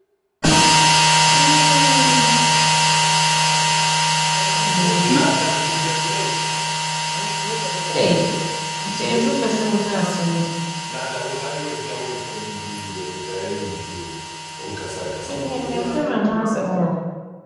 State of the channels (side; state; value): both; identical; correlation 1.00